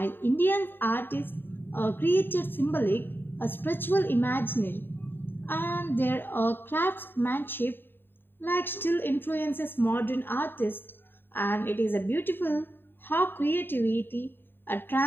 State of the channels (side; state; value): right; late; 0.098 ms